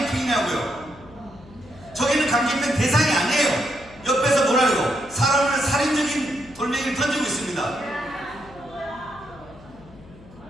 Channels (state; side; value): noise; left; hum, 21 dB below the sound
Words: 저기는 강제집행 대상이 아니에요. 옆에서 뭐라고요? 사람을 살인적인 돌멩이를 던지고 있습니다.